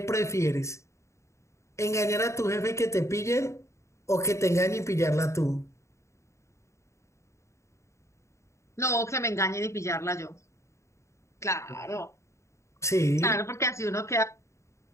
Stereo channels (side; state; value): right; late; 0.14 ms